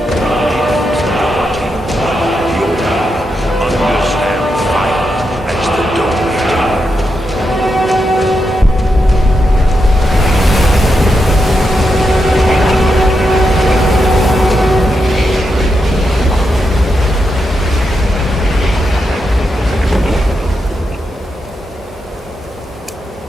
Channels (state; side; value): normal; both; correlation 0.85